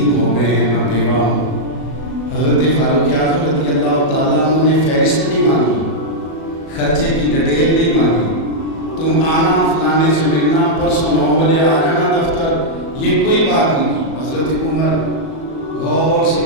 ہو گئے ہیں، میں بیوہ ہوں۔ حضرت فاروق اعظم رضی اللہ تعالیٰ عنہ نے فہرست نہیں مانگی، خرچے کی ڈیٹیل نہیں مانگی، تم آنا فلانے سے ملنا، پرسوں 9 بجے آ جانا دفتر، یہ کوئی بات نہیں کی۔ حضرت عمر غور سے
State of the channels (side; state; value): right; late; 37 ms